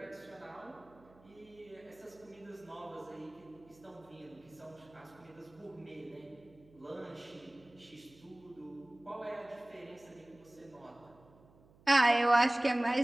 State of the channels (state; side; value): noise; right; hum, 26 dB below the sound